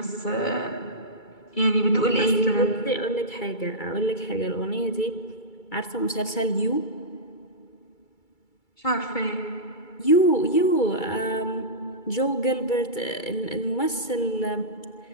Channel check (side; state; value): right; late; 2.3 ms